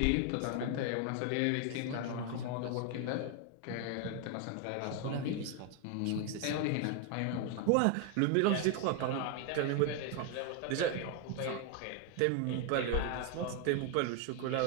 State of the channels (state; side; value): different; both; correlation 0.01